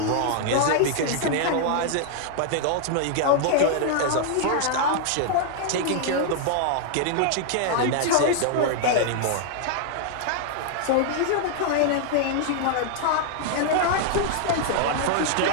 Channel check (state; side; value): different; both; correlation -0.01